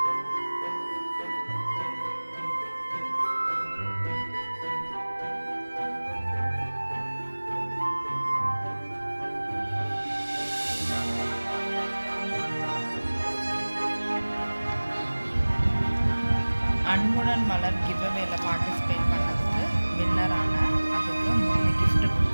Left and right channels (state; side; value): inverted; both; correlation -1.00